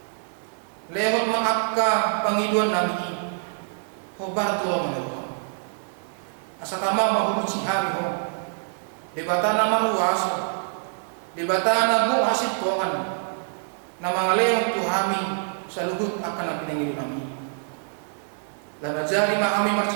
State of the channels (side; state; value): left; silent; digital silence